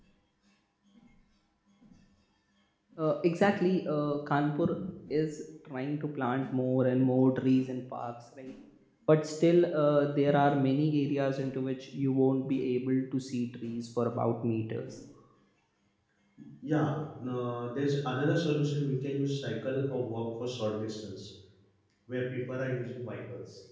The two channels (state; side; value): identical; both; correlation 1.00